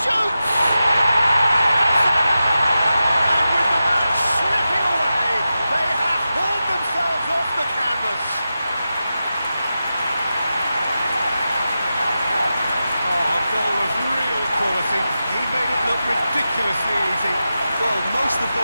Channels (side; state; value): both; inverted; correlation -0.92